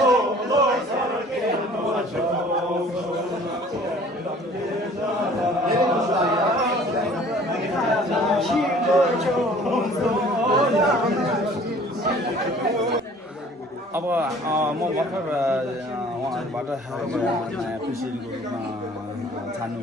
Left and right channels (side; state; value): both; normal; correlation 0.51